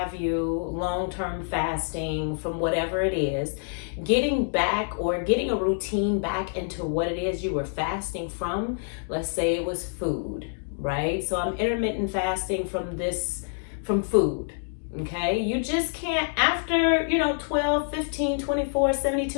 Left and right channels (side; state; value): right; silent; digital silence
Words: you, long-term fasting from whatever it is, getting back or getting a routine back into what it is you were fasting from. Let's say it was food, right? So I'm intermittent fasting from food, okay? You just can't, after, 12, 15, 24,